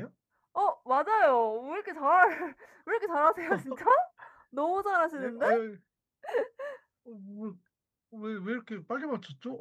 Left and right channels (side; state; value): both; identical; correlation 1.00